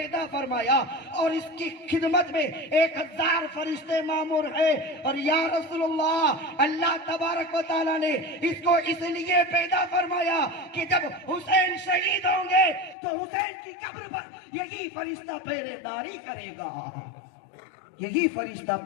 فرمایا، اور اس کی خدمت میں 1000 فرشتے مامور ہیں، اور یا رسول اللہ اللہ تبارک و تعالیٰ نے اس کو اس لیے پیدا فرمایا کہ جب حسین شہید ہوں گے تو حسین کی قبر پر یہی فرشتہ پہرے داری کرے گا، یہی فرشتہ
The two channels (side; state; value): right; drops out; at 13.0 s